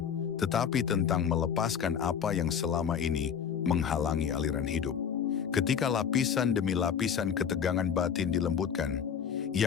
tetapi tentang melepaskan apa yang selama ini menghalangi aliran hidup. Ketika lapisan demi lapisan ketegangan batin dilembutkan,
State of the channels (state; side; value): quieter; right; 7.6 dB